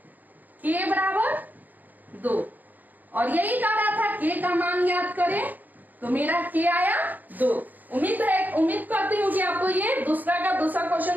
k बराबर 2, और यही कह रहा था k का मान ज्ञात करें, तो मेरा k आया 2। उम्मीद करती हूँ कि आपको ये दूसरा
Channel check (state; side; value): late; left; 0.084 ms